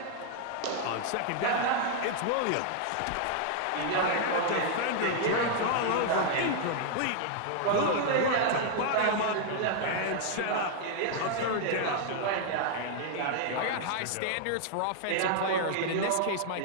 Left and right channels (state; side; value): different; both; correlation -0.01